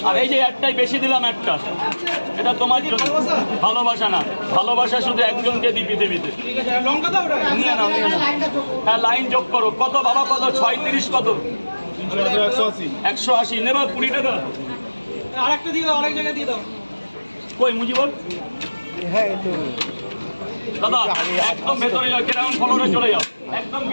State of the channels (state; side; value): inverted; both; correlation -1.00